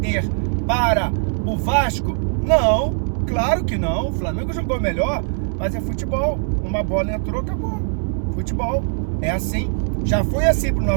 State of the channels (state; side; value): silent; left; 59 dB below the other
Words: para o Vasco? Não, claro que não. O Flamengo jogou melhor, mas é futebol. Uma bola entrou, acabou. Futebol é assim. Já foi assim pro